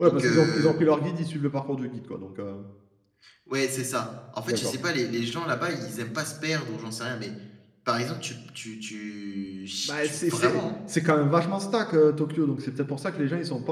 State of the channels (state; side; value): identical; both; correlation 1.00